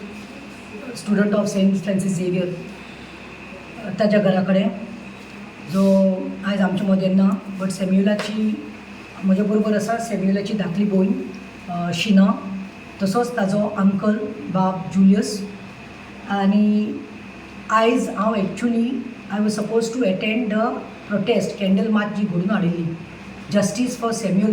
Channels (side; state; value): both; identical; correlation 1.00